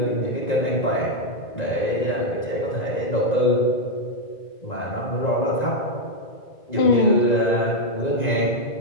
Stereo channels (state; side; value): late; right; 1.9 ms